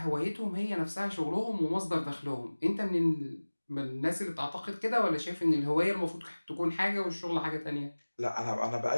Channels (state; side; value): inverted; both; correlation -1.00